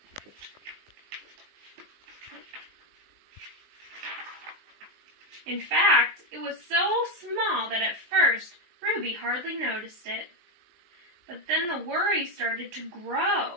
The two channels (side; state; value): left; late; 19 ms